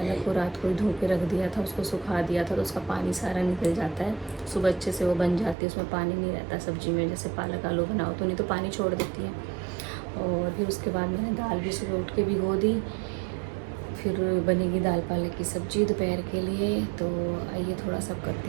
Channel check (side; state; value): left; drops out; at 5.6 s